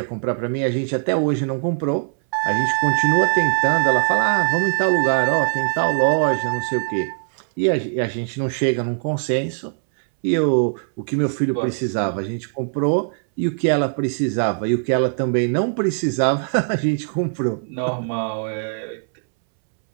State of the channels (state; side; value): silent; left; 65 dB below the other